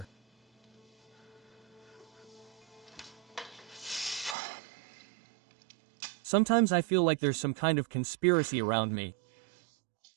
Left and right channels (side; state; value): left; drops out; at 4.4 s